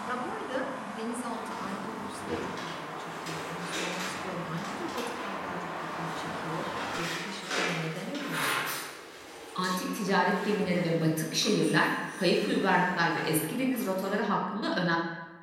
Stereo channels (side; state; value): both; identical; correlation 1.00